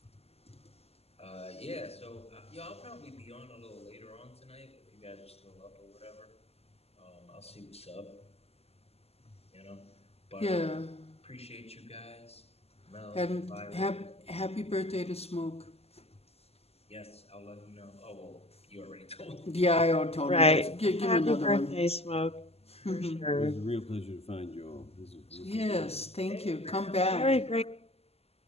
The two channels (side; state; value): right; late; 0.29 ms